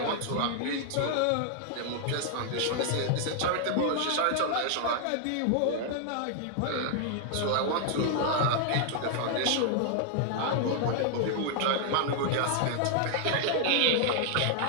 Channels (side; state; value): both; different; correlation 0.00